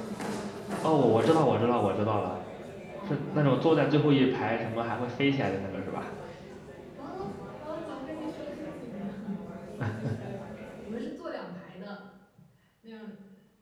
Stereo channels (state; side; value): identical; both; correlation 1.00